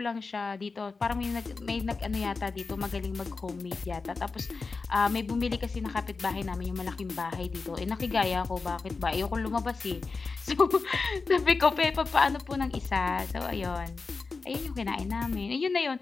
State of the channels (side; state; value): right; quieter; 4.3 dB